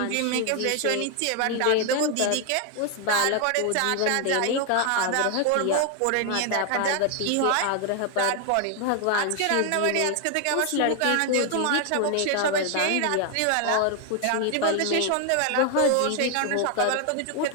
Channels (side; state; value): both; different; correlation 0.00